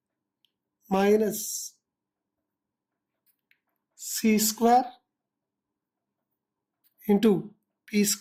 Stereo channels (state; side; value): identical; both; correlation 1.00